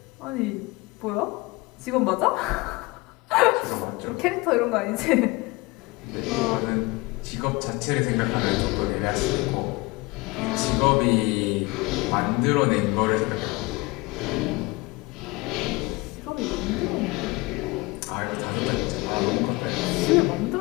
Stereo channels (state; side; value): quieter; right; 23.6 dB